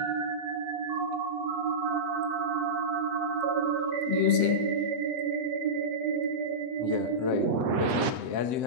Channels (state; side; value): late; left; 8.3 ms